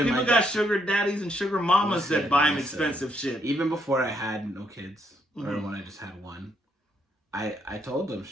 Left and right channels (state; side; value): normal; both; correlation 0.74